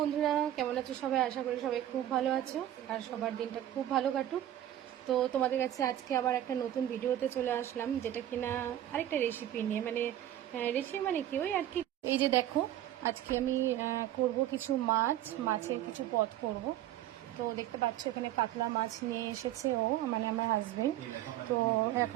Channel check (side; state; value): left; quieter; 12.5 dB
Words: কেমন আছো সবাই? আশা করি সবাই খুব ভালো আছো আর সবার দিনটা খুব ভালো কাটুক। তো তোমাদের কাছে আজকে আবার একটা নতুন ভিডিওতে চলে আসলাম, যেটা কিনা আরেকটা রেসিপি নিয়ে, মানে রেসিপি মানে কি ওই আর কি। এই যে দেখো, আজকে আমি করব কিছু মাছের কিছু পদ করব। তো দেখতে পাচ্ছ এখানে কাতলা মাছ নিয়ে এসেছে ও, মানে আমার হাজবেন্ড। তো